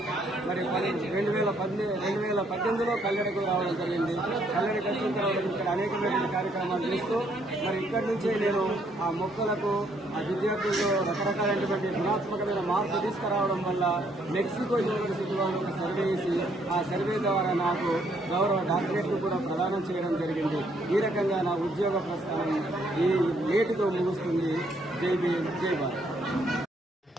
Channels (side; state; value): both; normal; correlation 0.69